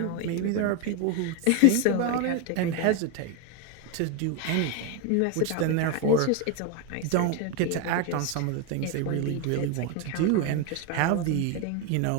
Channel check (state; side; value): different; both; correlation 0.02